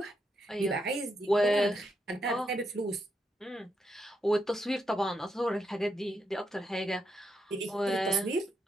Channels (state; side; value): normal; both; correlation 0.81